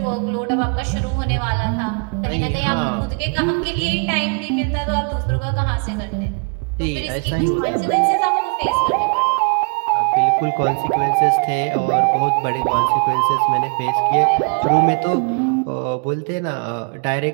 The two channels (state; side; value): quieter; left; 36.7 dB